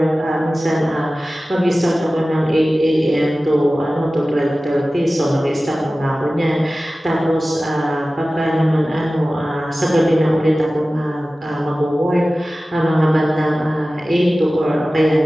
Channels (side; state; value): both; normal; correlation 0.96